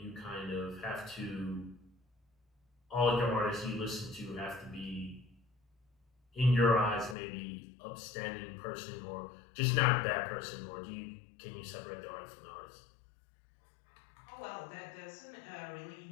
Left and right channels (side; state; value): right; drops out; at 7.2 s